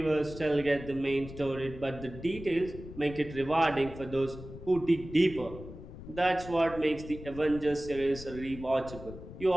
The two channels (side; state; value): left; noise; rumble, 13 dB below the sound